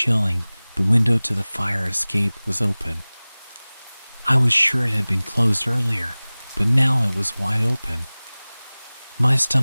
The window to the fire escape was open. I was sure it had been closed earlier, but now it was wide open. My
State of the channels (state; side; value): inverted; both; correlation -0.99